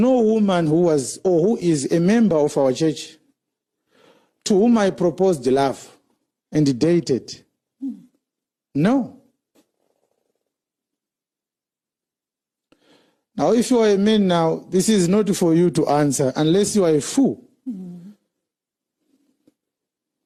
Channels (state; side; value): identical; both; correlation 1.00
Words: woman who was or who is a member of our church to whom I proposed love and dated. No. Now, if you are a man now, this is not for you to answer unless you are a fool.